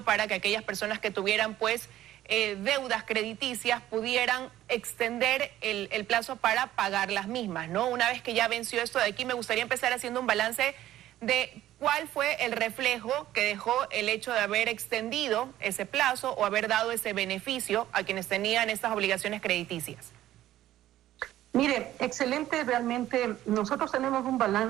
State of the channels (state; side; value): quieter; left; 13.6 dB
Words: que aquellas personas que tuvieran, pues, deudas crediticias pudieran extender el plazo para pagar las mismas, ¿no? Una vez que ya venció esto de aquí, me gustaría empezar haciendo un balance de cuál fue el reflejo que dejó el hecho de haber extendido ese plazo o haber dado ese beneficio a quienes tenían estas obligaciones crediticias. Mire, excelente, realmente nosotros tenemos un